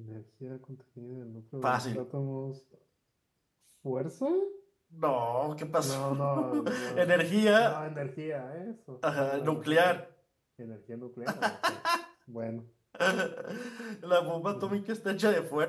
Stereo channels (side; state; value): both; identical; correlation 1.00